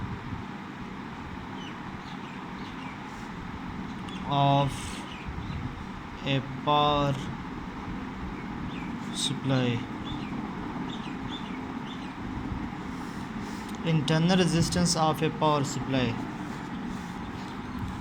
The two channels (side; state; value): both; identical; correlation 1.00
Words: of A power supply. Internal resistance of A power supply.